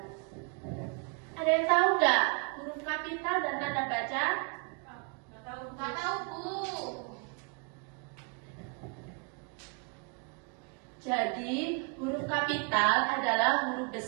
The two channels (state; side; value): quieter; left; 36.0 dB